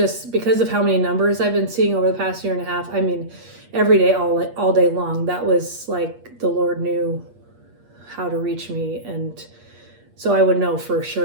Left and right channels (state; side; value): late; left; 8.4 ms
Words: because of how many numbers I've been seeing over the past year and a half, every day, all day long, that was the Lord knew how to reach me. And so I would know for